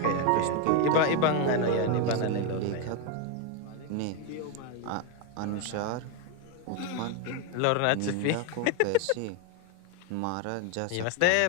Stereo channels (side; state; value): both; different; correlation 0.01